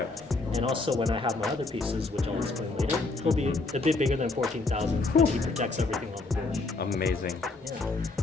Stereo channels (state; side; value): quieter; right; 3.5 dB